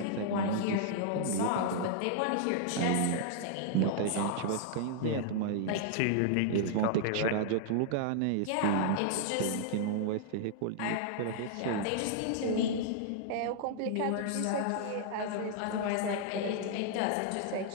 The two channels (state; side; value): different; both; correlation -0.01